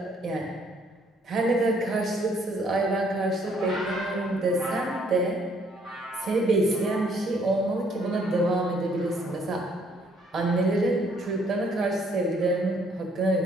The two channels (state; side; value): normal; both; correlation 0.65